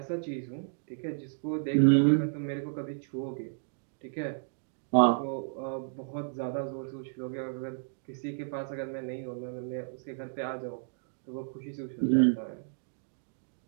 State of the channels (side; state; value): left; silent; digital silence